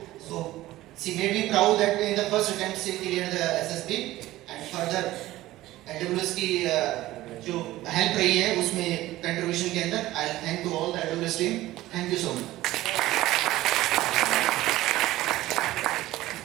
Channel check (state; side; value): quieter; left; 16.3 dB